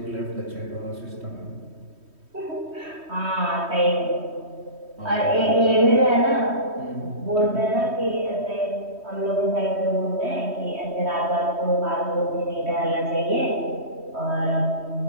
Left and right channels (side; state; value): left; late; 3.1 ms